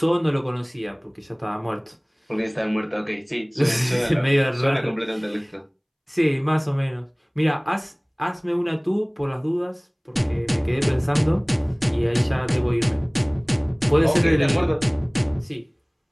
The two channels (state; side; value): identical; both; correlation 1.00